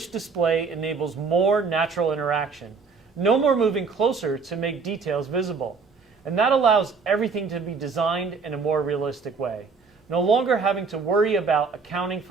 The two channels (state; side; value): quieter; left; 5.0 dB